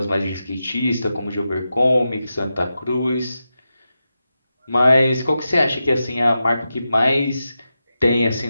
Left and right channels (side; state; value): both; inverted; correlation -0.90